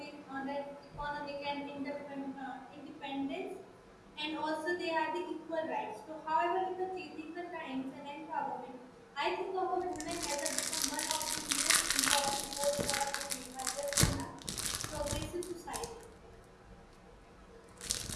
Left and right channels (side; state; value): both; identical; correlation 1.00